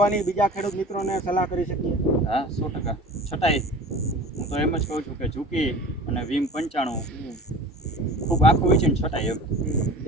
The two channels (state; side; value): normal; both; correlation 0.40